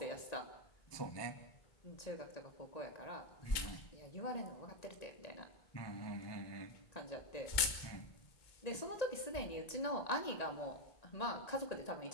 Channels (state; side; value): late; right; 2.2 ms